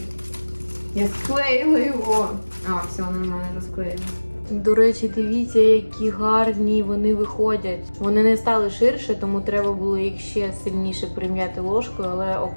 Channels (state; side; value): inverted; both; correlation -1.00